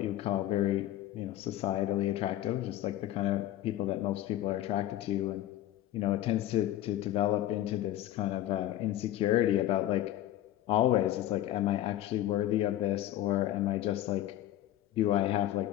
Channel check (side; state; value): right; quieter; 13.3 dB